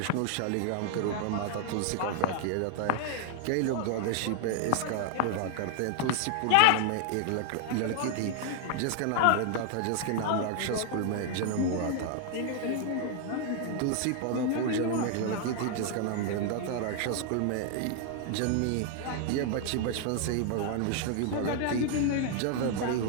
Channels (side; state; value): both; different; correlation 0.00